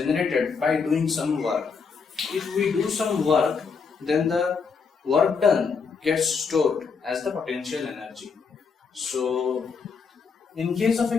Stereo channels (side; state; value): right; quieter; 5.4 dB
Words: by doing some work. If we do some work, then the work done gets stored as the potential energy. So in case of a